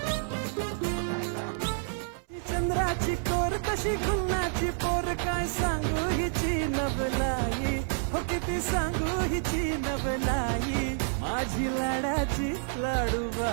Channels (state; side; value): silent; left; 59 dB below the other